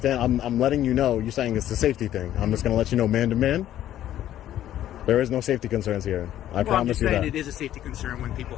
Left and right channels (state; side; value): quieter; right; 12.2 dB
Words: I'm letting you know. You're saying it's a safety thing. I'm just going to let you know, man to man. There is no safety concerns here. I promise you that. I'm just saying it is a safety concern when people